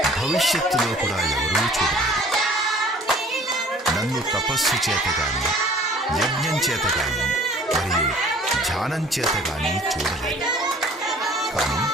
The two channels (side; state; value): both; normal; correlation 0.51